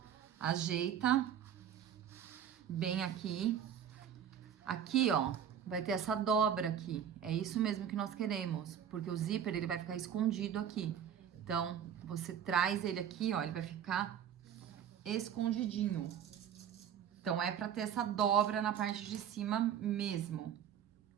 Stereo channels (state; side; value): quieter; left; 9.0 dB